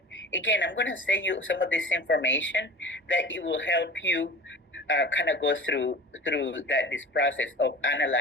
again, I'm going to send you some of this information that it will help you kind of go through this process of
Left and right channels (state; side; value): normal; both; correlation 0.38